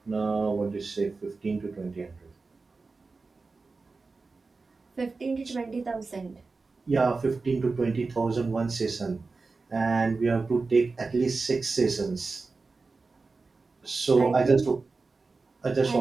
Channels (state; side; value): quieter; left; 4.0 dB